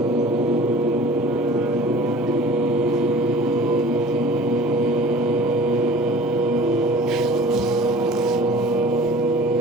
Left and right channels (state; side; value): normal; both; correlation 0.45